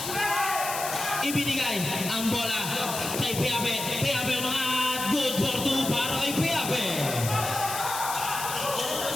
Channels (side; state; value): left; noise; hiss, 5 dB below the sound